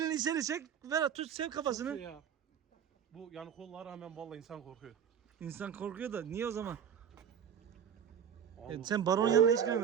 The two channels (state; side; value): quieter; left; 8.2 dB